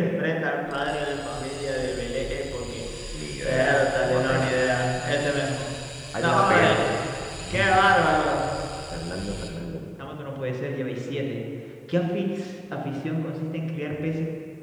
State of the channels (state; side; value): identical; both; correlation 1.00